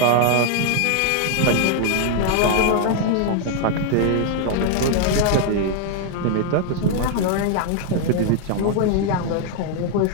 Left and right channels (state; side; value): different; both; correlation 0.00